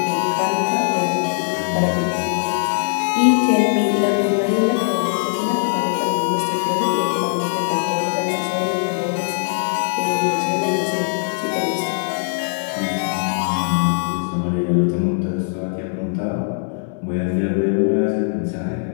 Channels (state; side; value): silent; right; digital silence